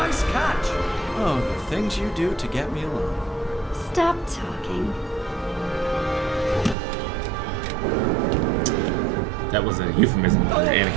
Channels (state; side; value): drops out; left; at 6.8 s